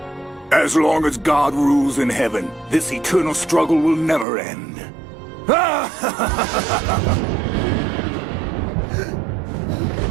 As long as God rules in heaven, this eternal struggle will never end.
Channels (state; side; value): drops out; left; at 4.2 s